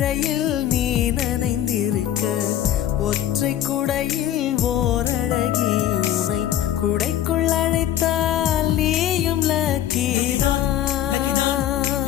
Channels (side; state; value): right; quieter; 11.4 dB